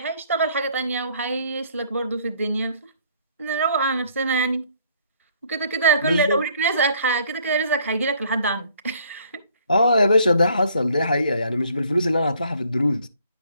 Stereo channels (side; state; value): both; inverted; correlation -0.61